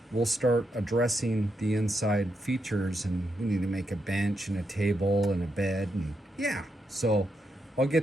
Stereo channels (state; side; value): normal; both; correlation 0.82